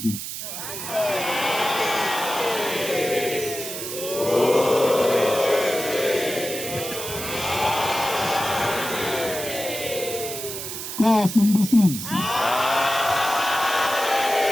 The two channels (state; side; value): noise; right; hiss, 7 dB below the sound